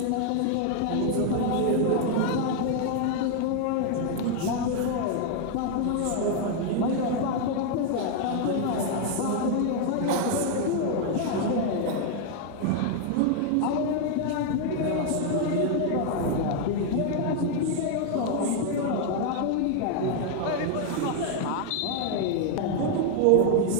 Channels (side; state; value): both; different; correlation 0.00